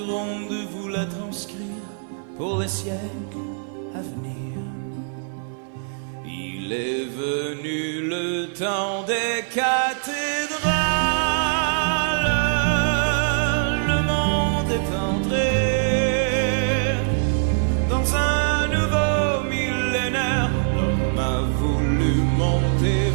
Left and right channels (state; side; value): silent; left; 58 dB below the other